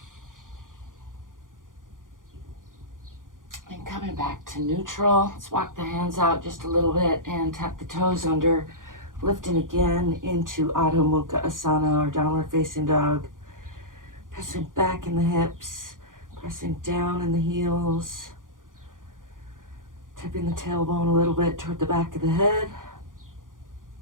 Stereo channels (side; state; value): left; late; 0.89 ms